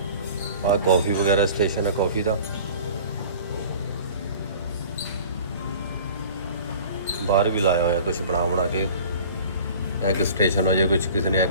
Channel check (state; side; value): inverted; both; correlation -0.44